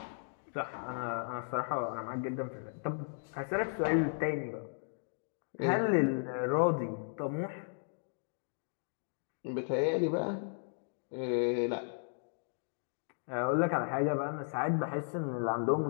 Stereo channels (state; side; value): silent; right; digital silence